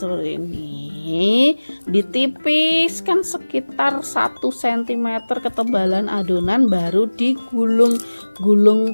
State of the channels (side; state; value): both; inverted; correlation -1.00